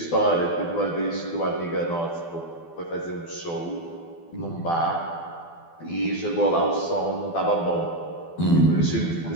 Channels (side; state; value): right; late; 12 ms